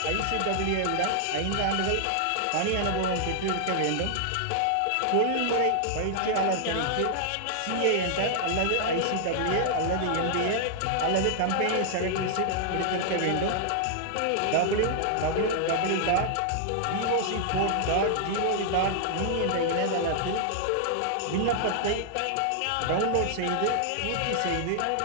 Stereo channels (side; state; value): both; different; correlation -0.01